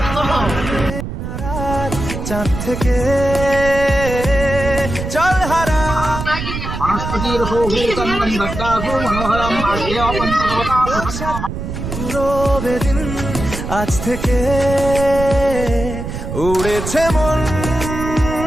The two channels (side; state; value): right; noise; rumble, 6 dB below the sound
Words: চাঁদ থেকে চল হারা পুরো বেদিন আজ থেকে উড়েছে মন,